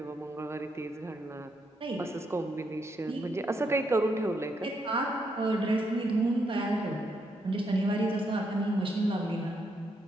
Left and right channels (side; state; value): both; normal; correlation 0.78